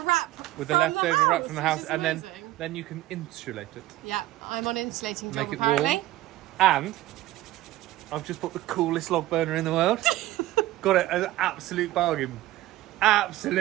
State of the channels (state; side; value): quieter; left; 15.8 dB